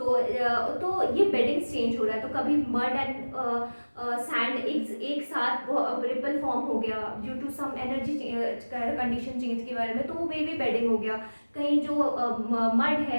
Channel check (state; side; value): inverted; both; correlation -1.00